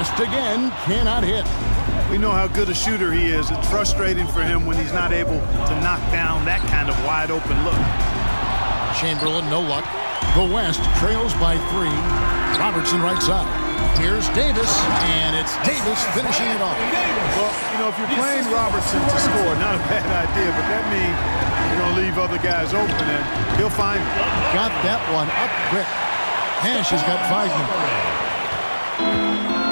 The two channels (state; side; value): inverted; both; correlation -1.00